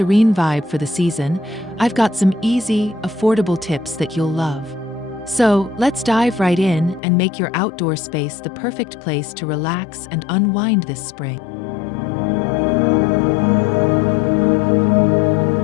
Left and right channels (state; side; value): drops out; right; at 7.0 s